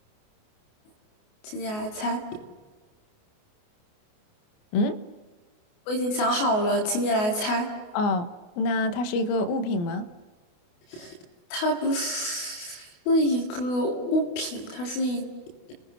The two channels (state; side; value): late; right; 28 ms